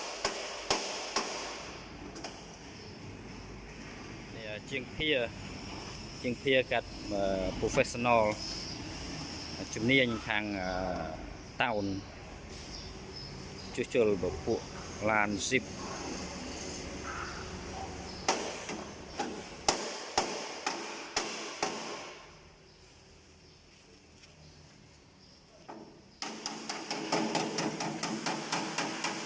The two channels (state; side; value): identical; both; correlation 1.00